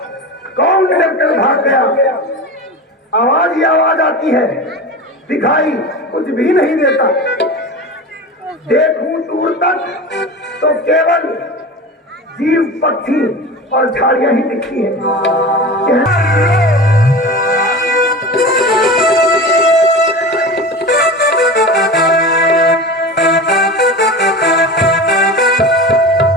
कौन डर कर भाग गया? आवाज ही आवाज आती है, दिखाई कुछ भी नहीं देता। देखूं दूर तक तो केवल जीव, पक्षी और झाड़ियां ही दिखती हैं।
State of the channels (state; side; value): normal; both; correlation 0.30